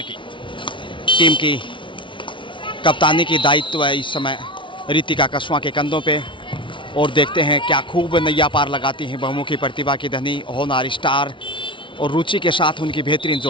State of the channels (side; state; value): right; late; 0.24 ms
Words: टीम की। कप्तानी की दायित्व है इस समय रितिका कसवा के कंधों पे। और देखते हैं क्या खूब नैया पार लगाती हैं बहुमुखी प्रतिभा की धनी होनहार स्टार और रुचि के साथ उनकी बेहतरीन